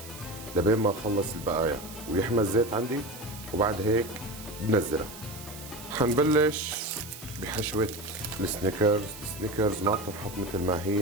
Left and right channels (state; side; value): noise; right; hiss, 14 dB below the sound